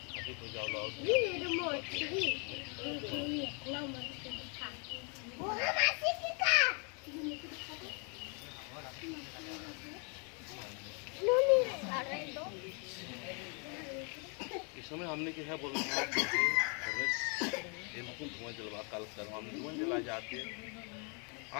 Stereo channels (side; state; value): right; quieter; 36.8 dB